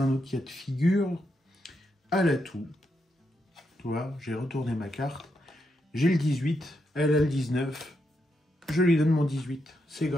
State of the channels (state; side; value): normal; both; correlation 0.82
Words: un autre cas de figure. à l'atout. Tu vois, j'ai retourné ma carte. J'ai le 18, elle a le 19. Je lui donne mon 18. C'est